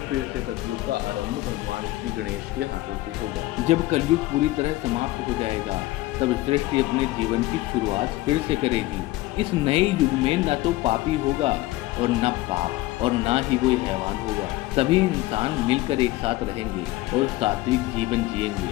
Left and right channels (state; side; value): quieter; right; 18.0 dB